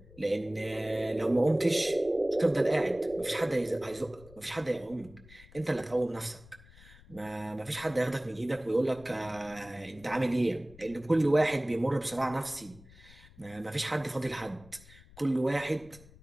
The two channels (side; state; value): left; noise; rumble, 22 dB below the sound